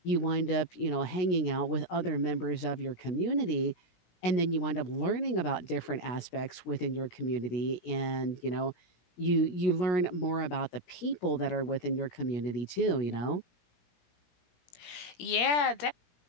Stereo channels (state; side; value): late; right; 17 ms